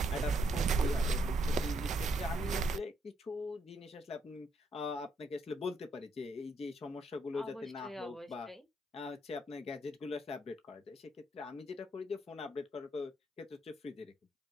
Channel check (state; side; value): normal; both; correlation 0.75